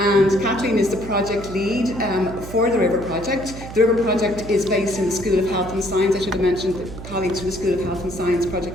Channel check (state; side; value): noise; right; hum, 12 dB below the sound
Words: Kathleen is the project lead for the RiVeR project. The RiVeR project is based in the School of Health and Science. I should have mentioned that colleagues from the School of Health and Science